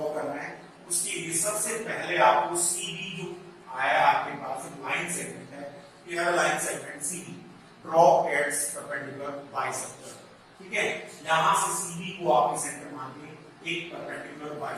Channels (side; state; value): both; identical; correlation 1.00